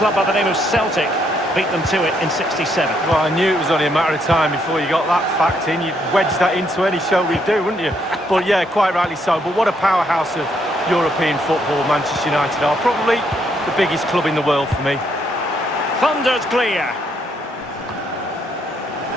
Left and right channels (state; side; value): normal; both; correlation 0.73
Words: by the name of Celtic beat them to it in 67. Well, I knew it was only a matter of time before you got that fact in. You'd wedge that into any show we do, wouldn't you? But yeah, quite rightly so. But what a powerhouse of European football Manchester United are. Probably the biggest club in the world for me. Thundered clear.